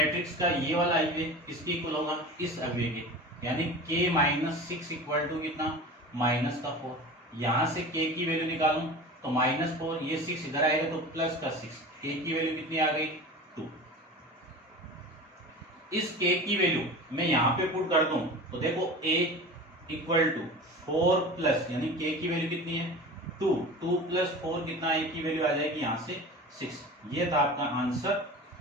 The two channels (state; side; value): normal; both; correlation 0.34